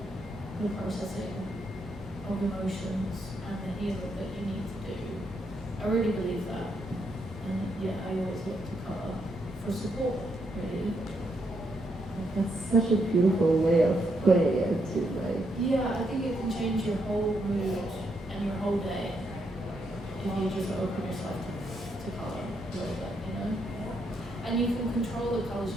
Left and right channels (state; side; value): normal; both; correlation 0.78